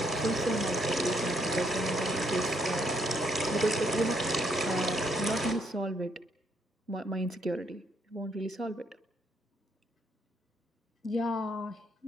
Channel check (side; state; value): both; normal; correlation 0.73